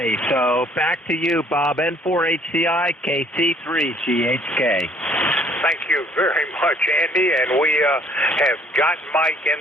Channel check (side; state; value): both; normal; correlation 0.60